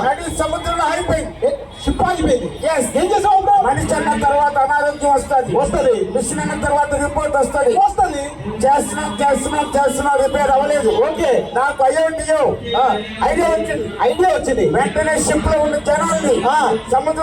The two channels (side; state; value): both; identical; correlation 1.00